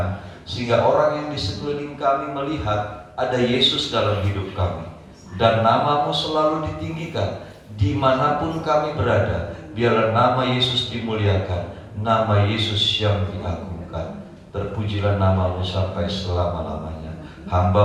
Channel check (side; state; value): both; identical; correlation 1.00